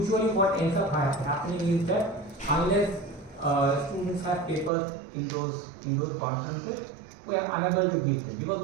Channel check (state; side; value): drops out; left; at 4.7 s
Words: what ends up happening is that unless students have papers in those conferences, we are unable to give them, because